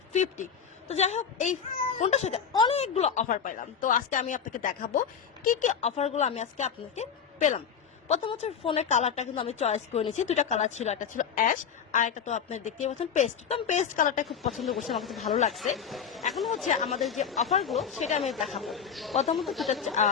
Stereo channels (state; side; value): quieter; right; 7.2 dB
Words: 50। তো যাই হোক, এই ফোনটার সাথে অনেকগুলো অফার পাইলাম। তো আজকে আমি আপনাকে দেখাবো কি কি অফারগুলো আমি আজকে আপনাকে পেলাম। প্রথম হচ্ছে ফোনের কালারটা কিন্তু আমি চয়েস করে নিয়েছি। দুটা কালার ছিল, একটা ছিল অ্যাশ আর একটা তো আপনি দেখতেই পাচ্ছেন পেস্ট। তো আমি পেস্ট কালারটা খুব পছন্দ করছি, আমার কাছে ভালো লাগছে। এখন হচ্ছে আমাদের যে অফারগুলো সেটা আমি দেখাবো। প্রথমত